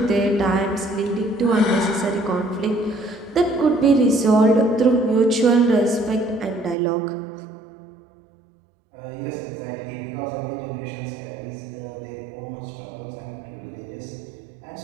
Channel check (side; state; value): left; drops out; at 6.8 s